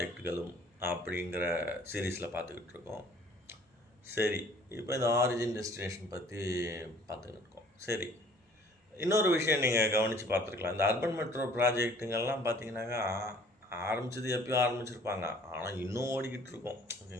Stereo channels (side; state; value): both; normal; correlation 0.55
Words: அப்படிங்கிற சீரீஸில் பார்த்துக்கிட்டு இருக்கோம். சரி, இப்போ இந்த ஆரிஜின் டெஸ்டினேஷன் பற்றி பார்த்துக்கிட்டு இருக்கோம். சரி, இன்னொரு விஷயம் நீங்கள் கவனித்து பார்த்துருக்கலாம். இந்த அர்பன் மெட்ரோ ப்ராஜெக்ட்டுங்கள்லாம் பார்த்தீங்கன்னாக்கா ஆரம்பித்தது எப்பயும் ஆரம்பிச்சிருப்பாங்க, ஆனால் இன்னும் ஓடிக்கிட்டு இருக்கோம்.